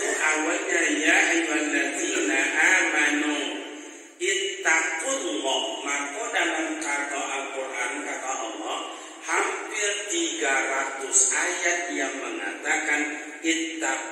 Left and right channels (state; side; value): identical; both; correlation 1.00